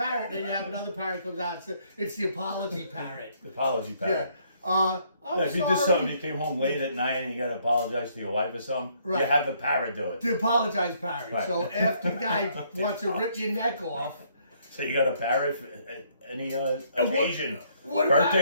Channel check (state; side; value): inverted; both; correlation -0.68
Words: Then you have another parrot comes out. It's the apology parrot. The apology parrot. I'm If you sorry. did something, you came home late at night and you got to apologize to your wife or something, Right. you have the parrot do it. The apologize parrot. Right. So after the guy wants to rip your neck off, So you got a parrot for any occasion. what